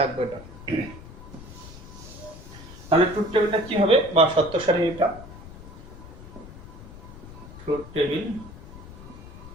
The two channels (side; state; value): left; noise; rumble, 15 dB below the sound